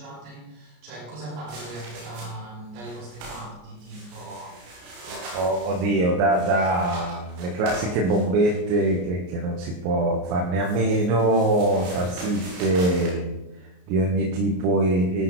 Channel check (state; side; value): late; left; 33 ms